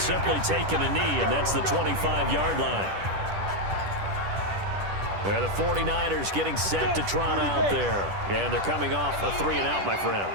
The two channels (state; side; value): late; left; 10 ms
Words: simply taken a knee, and that's the 25-yard line. The 49ers getting set to trot out there. And they're coming off a 3-and-out, my friend.